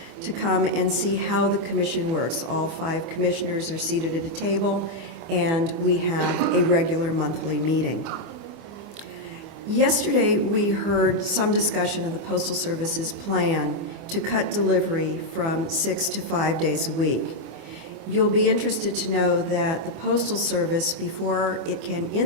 to come and see how the Commission works. All 5 commissioners are seated at a table, and we have a regular monthly meeting. Yesterday, we heard some discussion of the Postal Service's plan to cut delivery from 6 to 5 days a week. You'll be interested to know that the Postal Service, before it can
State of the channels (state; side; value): late; left; 24 ms